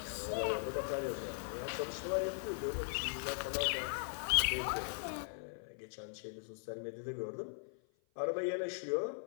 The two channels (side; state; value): right; silent; 51 dB below the other